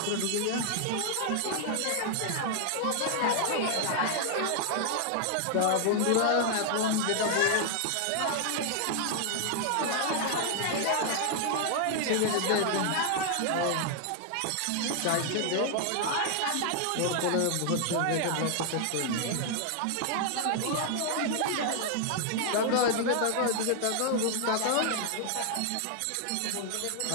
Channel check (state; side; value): different; both; correlation 0.00